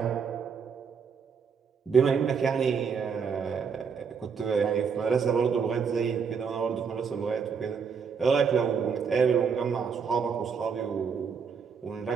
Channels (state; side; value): quieter; left; 6.2 dB